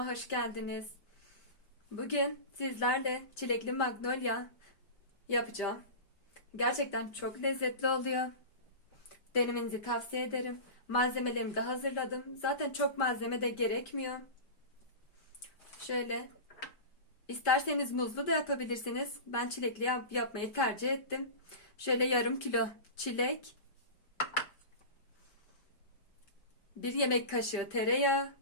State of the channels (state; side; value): late; right; 5.1 ms